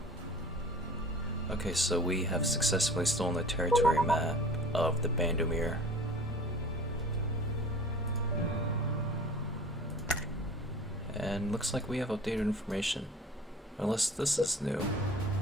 Okay, so we have successfully stolen the territory map of the Bandomir. And looks like we have updated information. Unless this is new.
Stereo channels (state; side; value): normal; both; correlation 0.43